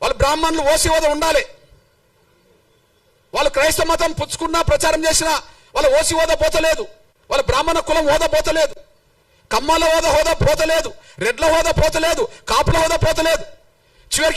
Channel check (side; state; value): both; identical; correlation 1.00